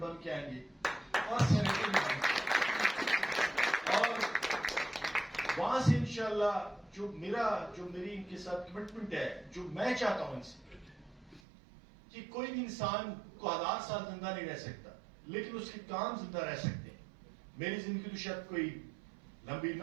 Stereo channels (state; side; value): drops out; left; at 11.4 s